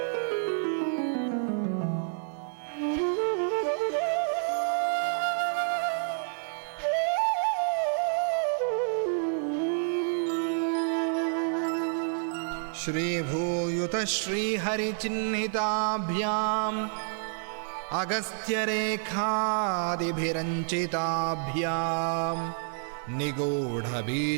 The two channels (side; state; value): left; silent; digital silence